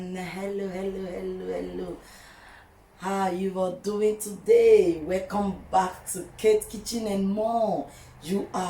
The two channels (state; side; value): identical; both; correlation 1.00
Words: Hello. How you are doing today? Welcome back to Kitchen and More. You